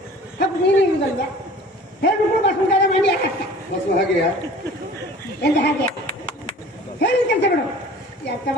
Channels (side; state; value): both; normal; correlation 0.45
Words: ಹಾಕು, ನೀನು ಇರುದಲ್ವ? ಹೇಳ್ಬಿಟ್ಟು ಬಸ್ ಮುಂದೆ ಮಂಡಿ ಹಾಕತ್ತ ಬಸ್ಸು ಹಾಗೆಯಾ? ಎಂತ ಹಾಗೆ ಹೇಳಿದ ಕೆಲಸ ಬಿಡು. ಎಂತ